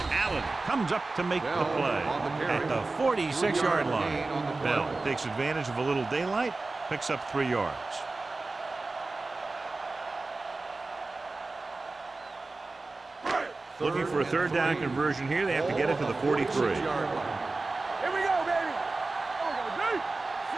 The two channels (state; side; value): quieter; left; 3.4 dB